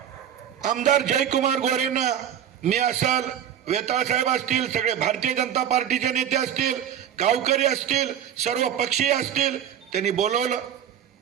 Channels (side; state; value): left; quieter; 9.6 dB